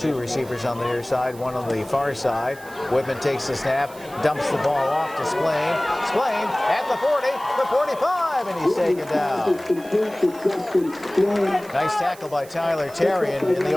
receivers on the near side, 1 on the far side. Whitman takes the snap, dumps the ball off to Splain. Splain at the 40, the 45, and he's taken down. Nice tackle by Tyler Terrian in the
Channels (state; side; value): noise; right; hiss, 21 dB below the sound